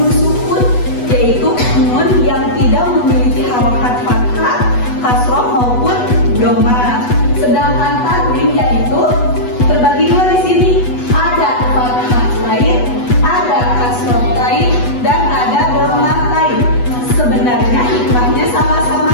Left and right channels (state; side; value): late; right; 8.1 ms